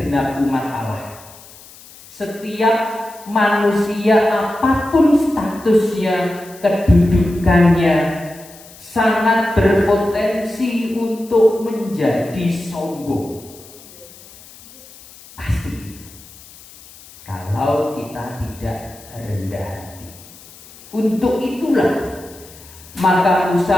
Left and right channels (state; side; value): noise; left; hiss, 21 dB below the sound